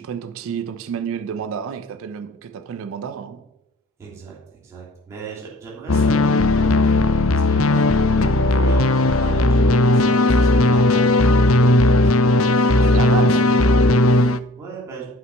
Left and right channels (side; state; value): both; normal; correlation 0.53